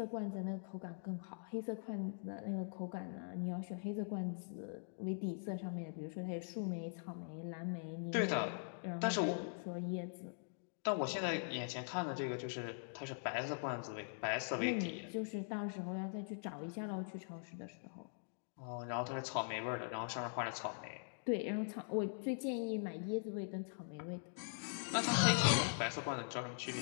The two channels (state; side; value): silent; right; digital silence